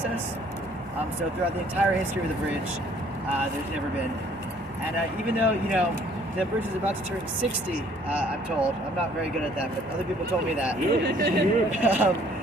So throughout the entire history of the bridge, there's never been. And even though, the bridge is about to turn 60, I'm told. I'm not very good at that, but other people told me that.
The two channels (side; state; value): both; normal; correlation 0.59